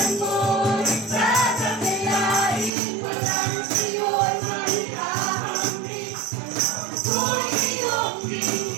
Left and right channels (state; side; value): drops out; left; at 2.7 s